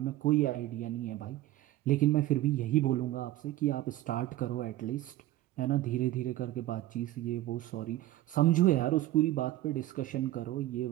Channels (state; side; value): quieter; left; 15.4 dB